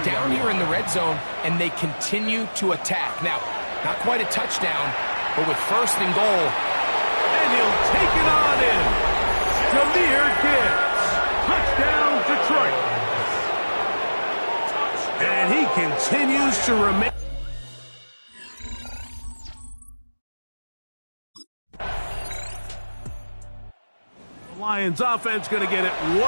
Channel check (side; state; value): both; inverted; correlation -1.00